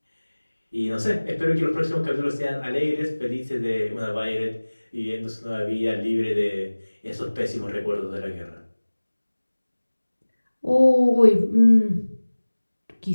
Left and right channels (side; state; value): both; inverted; correlation -1.00